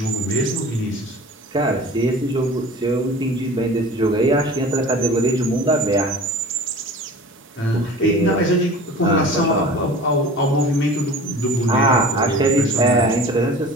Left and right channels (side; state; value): both; normal; correlation 0.40